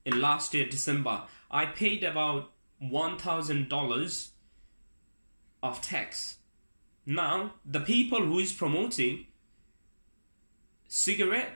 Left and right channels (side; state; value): both; inverted; correlation -1.00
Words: in last year, December, I paid about $1,000 of tax. Now, the people who is promoting